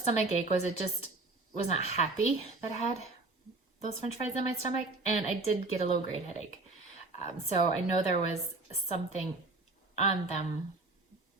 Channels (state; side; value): quieter; left; 3.2 dB